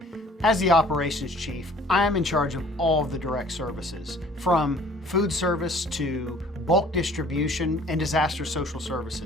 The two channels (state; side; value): normal; both; correlation 0.53